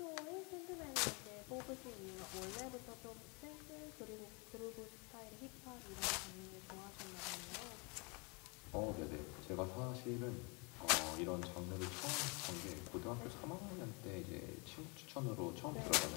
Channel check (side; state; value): right; quieter; 31.5 dB